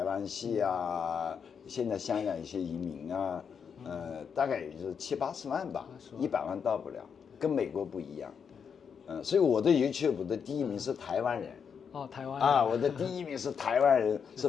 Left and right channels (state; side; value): quieter; right; 6.8 dB